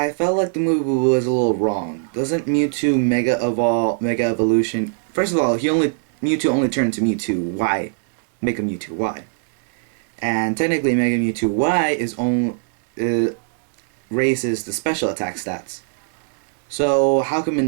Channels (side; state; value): left; silent; 65 dB below the other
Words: felt like the movie was a little wrong. Doesn't Mewtwo Mega Evolution? First of all, Mewtwo only turned to Mewtwo Y, Mega Mewtwo Y, and technically Mega Mewtwo Y is only raises the special attack stats. So how come